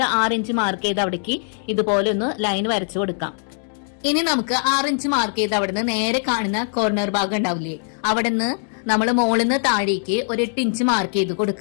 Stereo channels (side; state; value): right; silent; digital silence